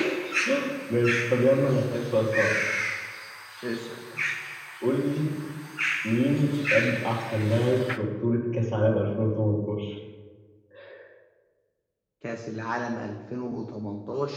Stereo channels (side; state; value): both; identical; correlation 1.00